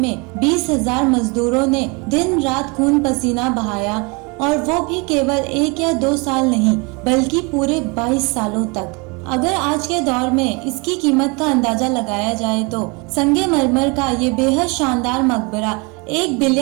20,000 मजदूरों ने दिन रात खून पसीना बहाया, और वो भी केवल 1 या 2 साल नहीं बल्कि पूरे 22 सालों तक। अगर आज के दौर में इसकी कीमत का अंदाजा लगाया जाए तो संगमरमर का ये बेहद शानदार मकबरा $1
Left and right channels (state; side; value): quieter; left; 29.9 dB